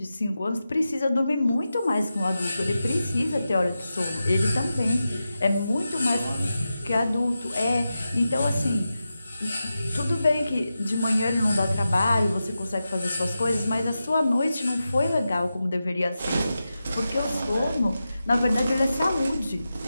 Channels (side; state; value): both; inverted; correlation -0.91